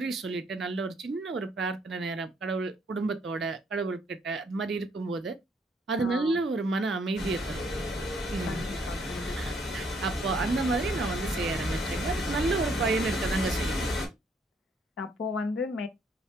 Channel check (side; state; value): both; normal; correlation 0.68